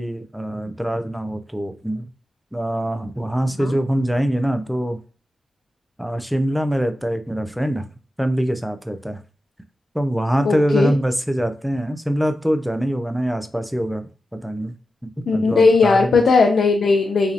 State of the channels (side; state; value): both; normal; correlation 0.91